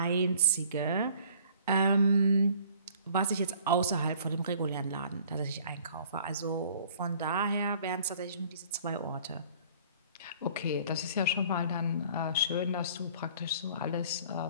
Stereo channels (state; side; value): inverted; both; correlation -0.53